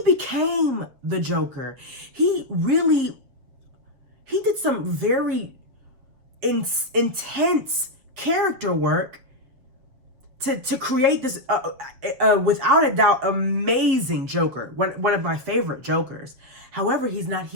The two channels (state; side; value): late; left; 7.7 ms